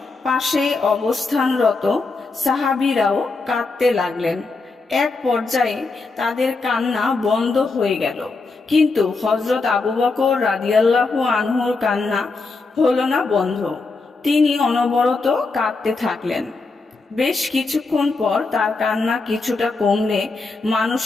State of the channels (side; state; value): right; quieter; 3.9 dB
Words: পাশে অবস্থানরত সাহাবীরাও কাঁদতে লাগলেন। এক পর্যায়ে তাদের কান্না বন্ধ হয়ে গেল, কিন্তু হযরত আবু বকর রাদিয়াল্লাহু আনহুর কান্না হলো না বন্ধ। তিনি অনবরত কাঁদতে থাকলেন। বেশ কিছুক্ষণ পর তার কান্না কিছুটা কমলে